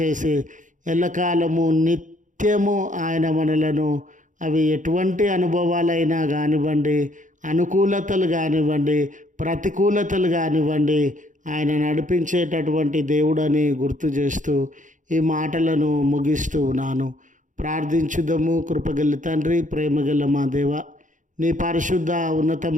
ఎల్లకాలము నిత్యము ఆయన మనలను, అవి ఎటువంటి అనుభవాలైనా కానివ్వండి, అనుకూలతలు కానివ్వండి, ప్రతికూలతలు కానివ్వండి, ఆయన నడిపించేటటువంటి దేవుడని గుర్తు చేస్తూ ఈ మాటలను ముగిస్తూ ఉన్నాను. ప్రార్థించుదము. కృపగల తండ్రి, ప్రేమగల మా దేవ, నీ పరిశుద్ధ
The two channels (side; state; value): left; late; 0.37 ms